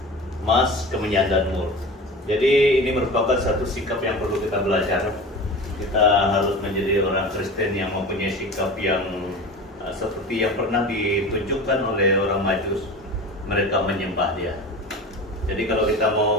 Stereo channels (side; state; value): both; normal; correlation 0.33